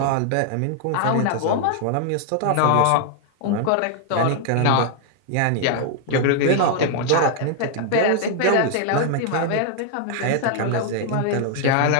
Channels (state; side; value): different; both; correlation 0.00